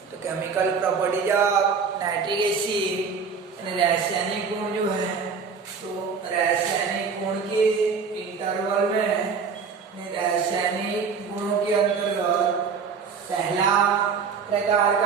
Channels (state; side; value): quieter; left; 5.7 dB